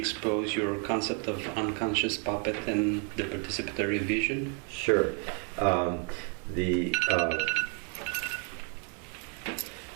your concept of unconscious puppet and the participatory vision? Sure. the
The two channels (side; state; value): left; quieter; 39.7 dB